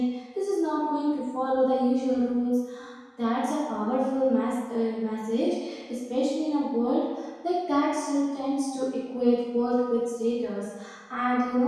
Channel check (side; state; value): both; identical; correlation 1.00